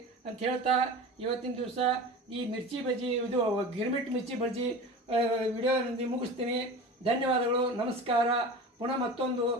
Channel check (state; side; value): normal; both; correlation 0.33